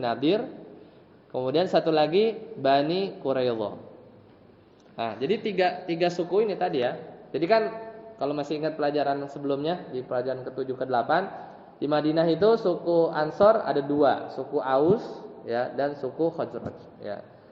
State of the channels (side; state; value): both; identical; correlation 1.00